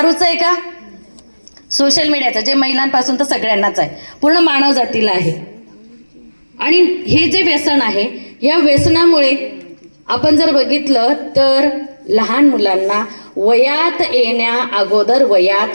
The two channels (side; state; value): both; inverted; correlation -1.00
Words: आहे का? सोशल मीडियाचं, जे महिलांपासून तर सगळ्यांनाच आहे, पूर्ण मानव जातीला आहे. आणि हे जे व्यसन आहे, या व्यसनामुळे आपण जर बघितलं तर लहान मुलांना वयात येण्या अगोदर